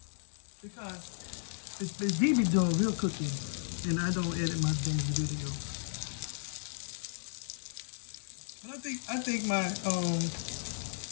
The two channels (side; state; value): right; silent; digital silence